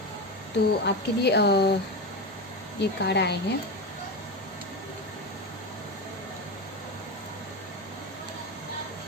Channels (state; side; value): normal; both; correlation 0.18